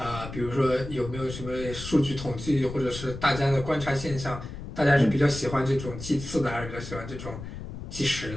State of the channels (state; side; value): noise; left; rumble, 10 dB below the sound